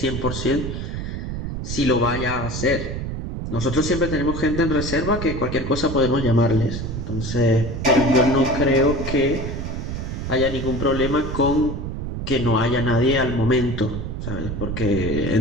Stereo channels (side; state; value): right; noise; rumble, 5 dB below the sound